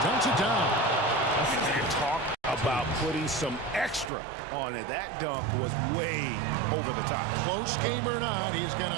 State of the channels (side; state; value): left; drops out; at 4.1 s